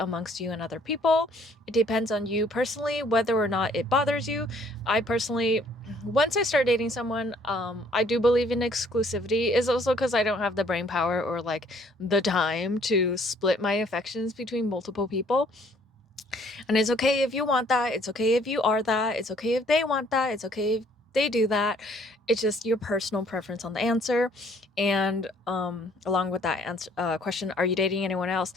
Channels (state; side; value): normal; both; correlation 0.61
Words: you and other people. It depends on you personally whether or not it bothers you. I personally, once I start dating someone, I do believe in exclusivity. Is also because I don't have the brain power or like the time to split my affections between multiple people. And it's okay if you want that. It's okay if you are that. It's okay if they want that. It's okay if they do that. It's just your personal preference on the answer. And along with that question, are you dating anyone else?